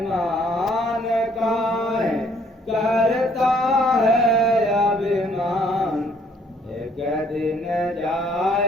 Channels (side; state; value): both; normal; correlation 0.63